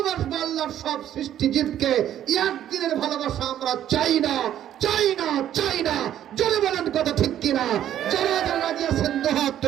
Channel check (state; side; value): quieter; left; 11.2 dB